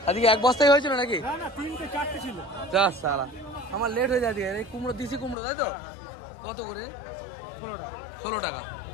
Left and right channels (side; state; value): right; drops out; at 5.4 s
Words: আজকে এক বস্তাই হয়েছিল নাকি? না না, 3টে 4টে ছিল। যা সালা, আমার লেট হয়ে যায়। এই কুমড়ো, দিশি কুমড়ো, তাই তো? কত করে? 16 টাকা।